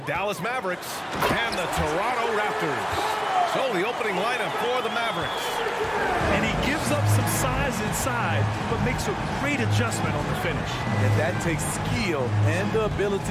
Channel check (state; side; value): identical; both; correlation 1.00